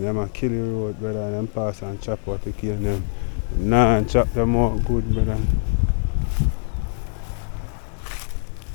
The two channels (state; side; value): silent; right; digital silence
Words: them a kill the road, brother, and them pass and chop out the cane them. Nah, and chop them out good, brother.